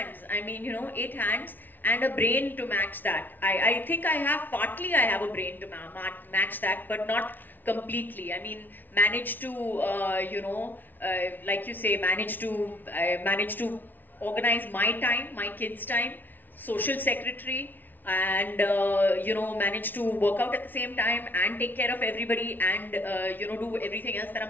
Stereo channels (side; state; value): right; late; 0.087 ms